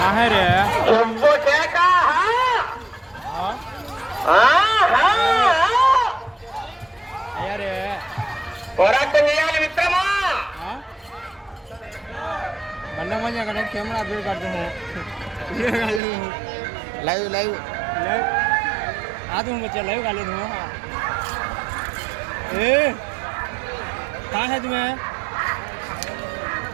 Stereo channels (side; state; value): left; drops out; at 16.0 s